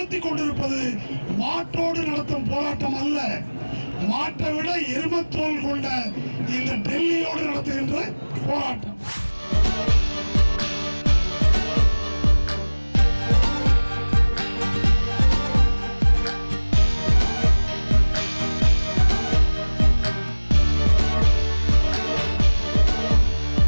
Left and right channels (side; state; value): both; inverted; correlation -1.00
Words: கொண்டிருப்பது மாட்டோடு நடத்தும் போராட்டம் அல்ல. மாட்டை விட எருமத்தோல் கொண்ட இந்த டெல்லியோடு நடத்துகின்ற போராட்டம்.